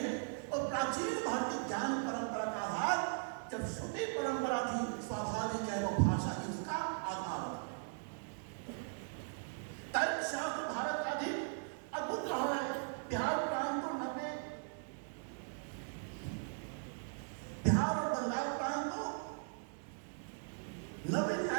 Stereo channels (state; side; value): silent; left; digital silence